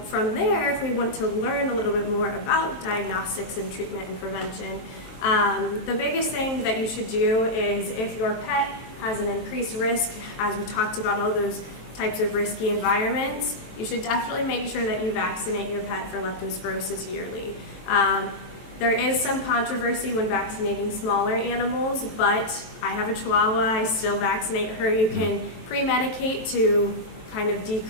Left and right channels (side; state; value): right; late; 23 ms